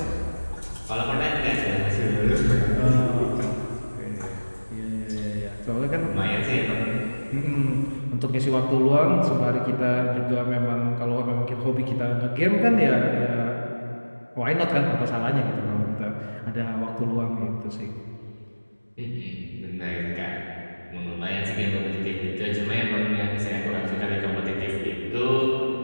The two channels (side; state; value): both; inverted; correlation -1.00